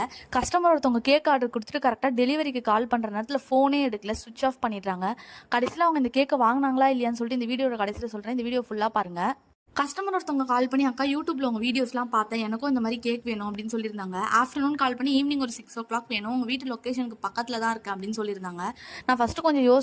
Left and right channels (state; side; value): identical; both; correlation 1.00